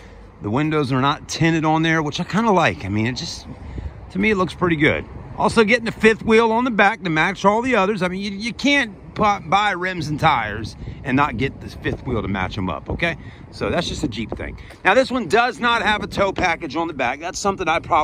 The windows are not tinted on there, which I kind of like. I mean, it just, to me, it looks pretty good. Also getting the fifth wheel on the back to match all the others. I mean, you can't buy rims and tires and not get this fifth wheel to match them up, okay? So that's just a Jeep thing. Now, this one does not have a tow package on the back. That's something I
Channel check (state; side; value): identical; both; correlation 1.00